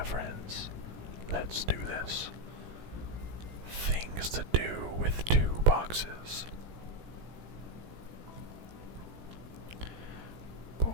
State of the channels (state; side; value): late; left; 17 ms